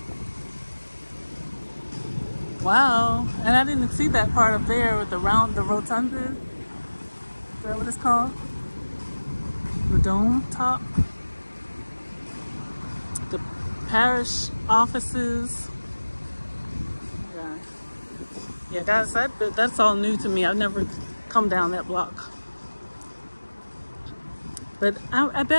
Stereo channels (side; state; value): both; inverted; correlation -1.00